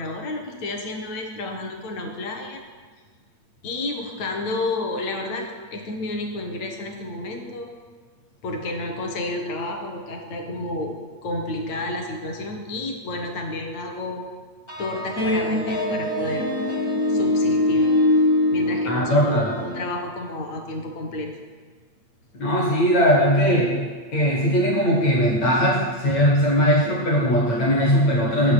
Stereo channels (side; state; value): right; late; 8.7 ms